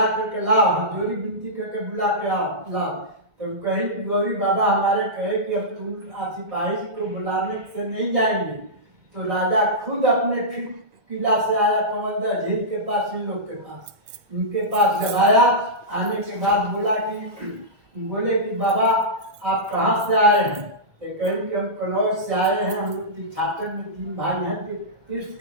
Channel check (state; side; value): late; left; 1.7 ms